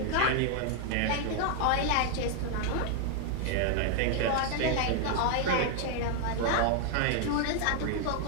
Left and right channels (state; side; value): different; both; correlation 0.00